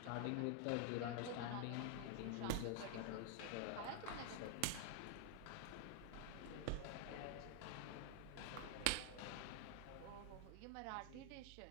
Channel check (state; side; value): different; both; correlation 0.00